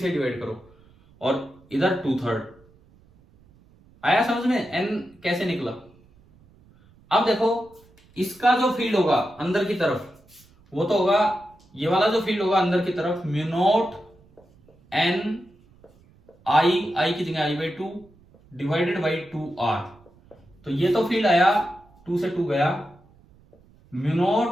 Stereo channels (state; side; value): noise; right; rumble, 29 dB below the sound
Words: डिवाइड करो, और इधर 2/3 आया समझ में? n कैसे निकला? अब देखो, इसका जो फील्ड होगा अंदर की तरफ, वो तो होगा, ये वाला जो फील्ड होगा अंदर की तरफ, म्यू नॉट n I की जगह I/2 डिवाइडेड बाई 2r। तो ये तो फील्ड आया, 2 से 2 गया, mu